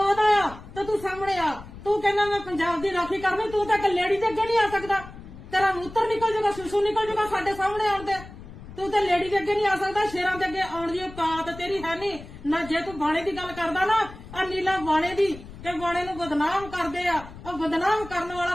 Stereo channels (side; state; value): left; noise; rumble, 15 dB below the sound